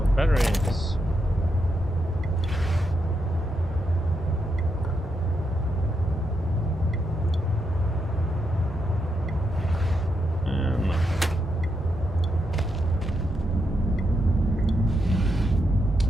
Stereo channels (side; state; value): both; normal; correlation 0.82